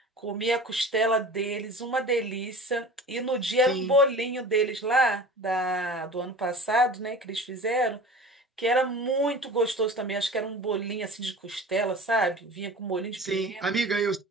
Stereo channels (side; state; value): both; normal; correlation 0.38